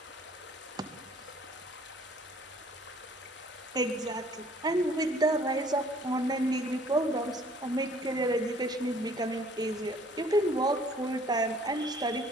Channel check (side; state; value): both; normal; correlation 0.57